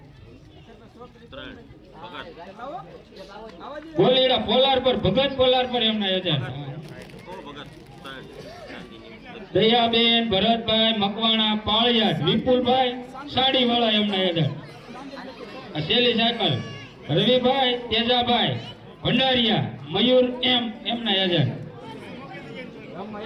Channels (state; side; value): identical; both; correlation 1.00